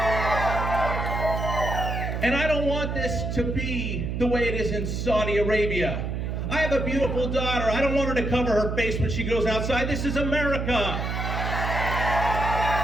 And I don't want this to be the way it is in Saudi Arabia. I have a beautiful daughter. I don't want her to cover her face when she goes outside. This is America.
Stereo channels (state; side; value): noise; right; hum, 2 dB below the sound